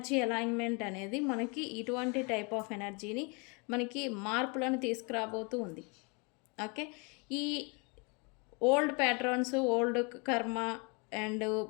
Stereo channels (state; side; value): quieter; right; 32.2 dB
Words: అలైన్మెంట్ అనేది మనకి ఇటువంటి టైప్ ఆఫ్ ఎనర్జీని మనకి మార్పులను తీసుకురాబోతూ ఉంది. ఓకే, ఈ ఓల్డ్ ప్యాటర్న్స్, ఓల్డ్ కర్మ అండ్